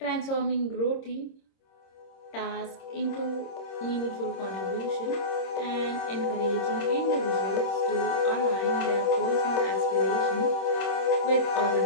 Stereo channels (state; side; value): late; right; 26 ms